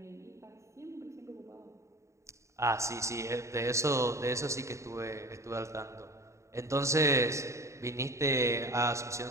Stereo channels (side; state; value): left; late; 0.14 ms